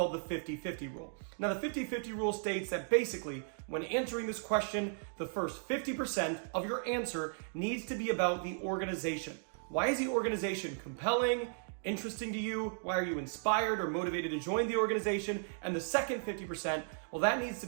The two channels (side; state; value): left; silent; digital silence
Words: the 50-50 rule. Now, the 50-50 rule states that basically, when answering this question, the first 50% of your answer needs to be about the organization. Why is the organization compelling, interesting to you? Why are you inspired or motivated to join the organization? And the second 50%, well, that needs to